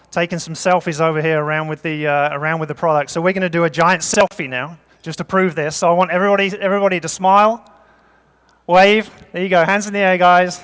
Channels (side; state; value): both; identical; correlation 1.00